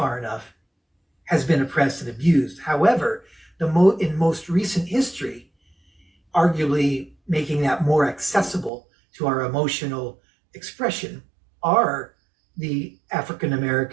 enough, has been oppressed and abused. However, in most recent history, arguably making that more accessible to our emotional expression, are the African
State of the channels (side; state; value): left; drops out; at 8.7 s